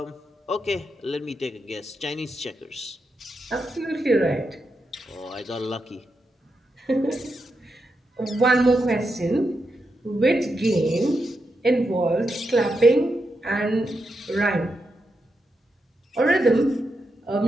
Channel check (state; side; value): normal; both; correlation 0.85